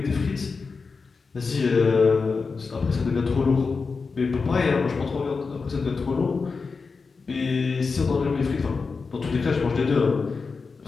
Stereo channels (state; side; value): quieter; right; 4.7 dB